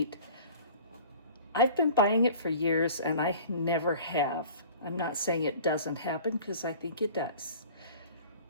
I've been buying it for years and I never have. I'm not saying it doesn't happen because I think it does.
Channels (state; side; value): inverted; both; correlation -0.44